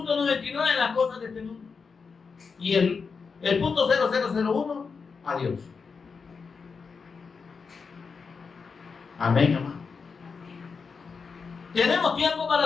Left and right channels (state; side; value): quieter; right; 5.2 dB